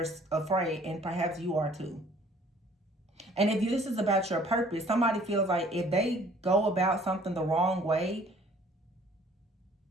afraid, and perhaps you are too. And if this is about your purpose, somebody feels like if they go about something the wrong way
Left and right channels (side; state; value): both; normal; correlation 0.56